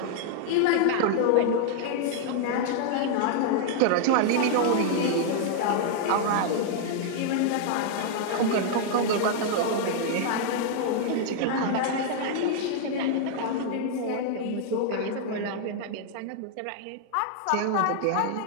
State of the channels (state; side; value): different; both; correlation -0.01